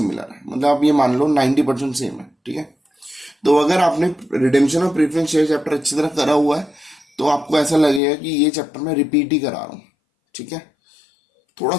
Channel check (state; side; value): drops out; right; at 8.0 s